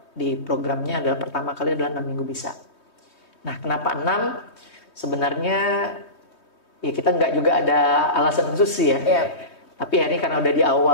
di programnya adalah pertama kali adalah 6 minggu bisa. Nah kenapa 6? Sebenarnya ya kita nggak juga ada alasan khusus sih ya. Yeah. Tapi akhirnya karena udah di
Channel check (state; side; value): late; right; 3.2 ms